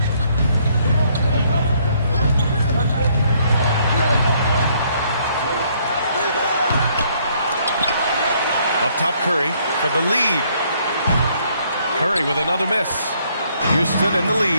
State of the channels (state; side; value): inverted; both; correlation -0.67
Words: Up top Curry for the lead. Curry with another miss. Houston in the